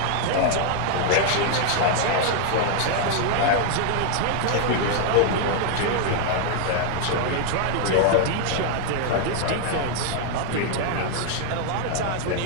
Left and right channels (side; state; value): both; different; correlation 0.00